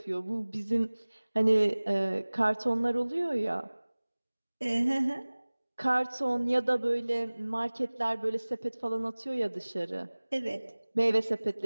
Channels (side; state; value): both; inverted; correlation -1.00